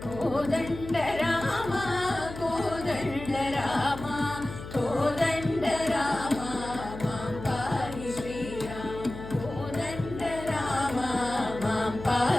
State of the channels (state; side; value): noise; left; hum, 11 dB below the sound